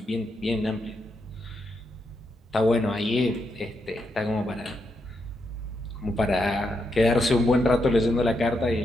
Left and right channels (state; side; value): normal; both; correlation 0.82